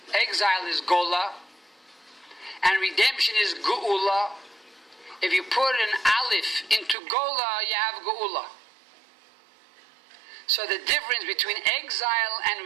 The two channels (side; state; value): left; drops out; at 7.0 s